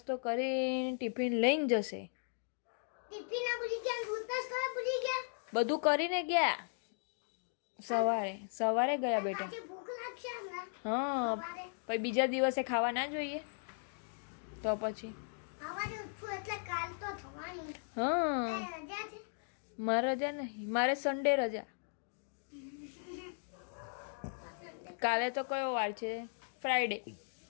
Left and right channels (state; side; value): silent; right; digital silence